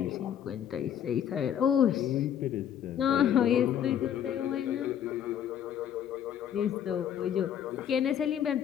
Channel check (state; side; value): quieter; right; 9.6 dB